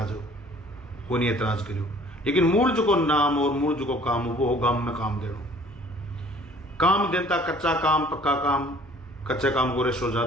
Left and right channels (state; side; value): normal; both; correlation 0.53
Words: हो, को नहीं एतराज करियो। लेकिन मूल जो को नाम और मूल जो को काम वो गांव में काम देनो। काम देता कच्चा काम पक्का काम, कच्चे काम को रेशो